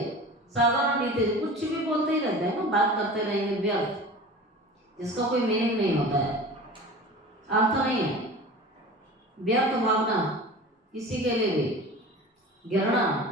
साधारण रीति कुछ भी बोलते ही रहते हैं ना, बात करते रहेंगे व्यर्थ, जिसका कोई मीनिंग नहीं होता है, अर्थ नहीं है। व्यर्थ भावना, किसी के लिए भी घृणा,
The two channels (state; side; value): normal; both; correlation 0.37